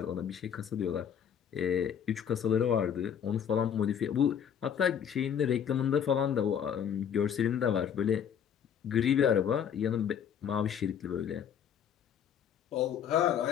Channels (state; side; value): quieter; right; 8.4 dB